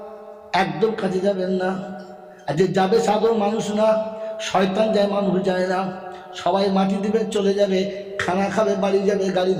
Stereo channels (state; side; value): identical; both; correlation 1.00